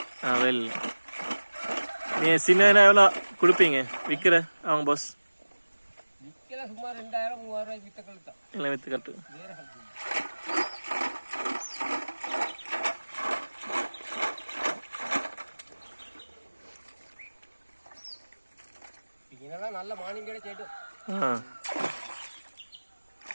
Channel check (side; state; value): both; inverted; correlation -1.00